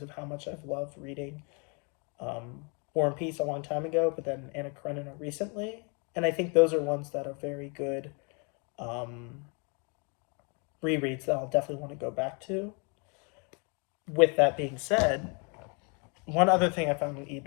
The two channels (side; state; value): right; quieter; 35.0 dB